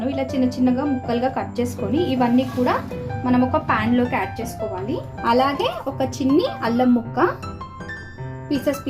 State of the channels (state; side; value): identical; both; correlation 1.00